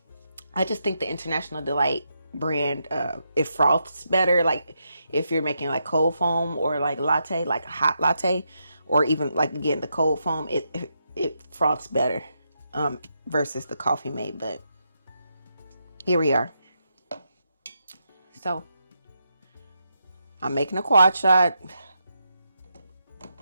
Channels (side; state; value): both; inverted; correlation -0.83